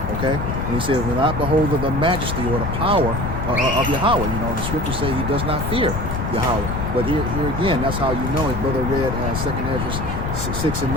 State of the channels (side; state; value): left; noise; rumble, 3 dB below the sound